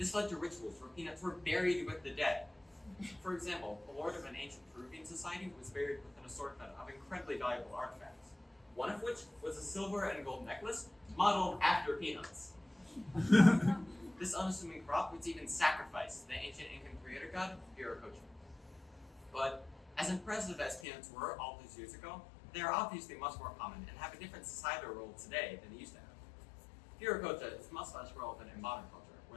led to rituals where peanuts were buried with the dead. For example, the lord of an ancient Peruvian society was buried with an assortment of incredibly valuable artifacts, one of which was a silver and gold necklace modeled after peanuts. This unassuming crop was even sacrificed to the ancient Incan creator god, Viracocha. But as impressive as peanuts were all those years ago, they are obviously much more common and have a different societal role today than they used to have. Viracocha is much less relevant in modern culture,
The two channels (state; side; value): drops out; right; at 20.9 s